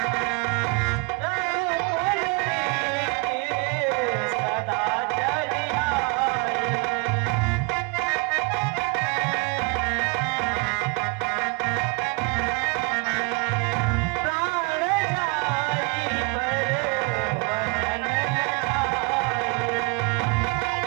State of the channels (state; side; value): quieter; left; 30.6 dB